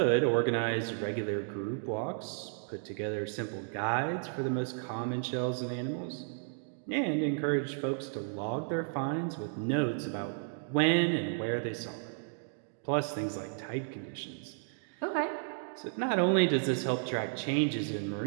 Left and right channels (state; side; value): silent; left; digital silence